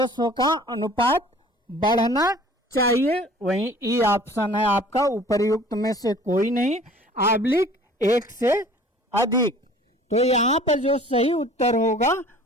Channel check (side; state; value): both; normal; correlation 0.49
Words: का अनुपात बढ़ना चाहिए, वहीं ई ऑप्शन है आपका उपर्युक्त में से कोई नहीं, ऑब्लिक एक से अधिक। तो यहाँ पर जो सही उत्तर होगा